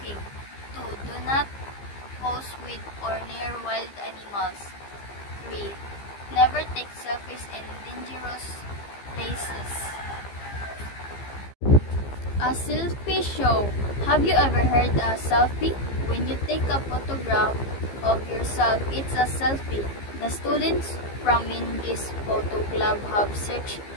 2. Do not pose with or near wild animals. 3. Never take selfies in dangerous places. A selfie show. Have you ever heard a selfie? When you take a photograph of yourself, it's a selfie. The students from this photo club have searched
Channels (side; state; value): right; late; 15 ms